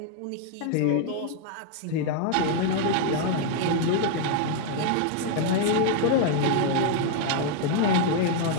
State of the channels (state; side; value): different; both; correlation 0.00